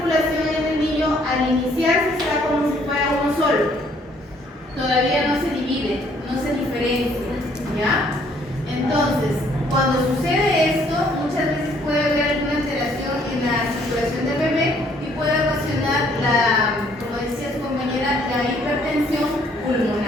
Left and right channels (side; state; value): both; normal; correlation 0.63